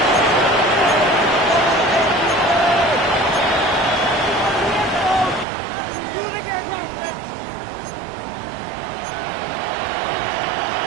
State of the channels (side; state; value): left; drops out; at 5.5 s